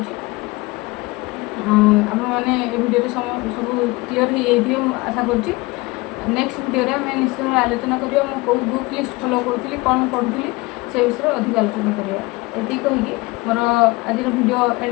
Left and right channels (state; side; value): quieter; right; 22.8 dB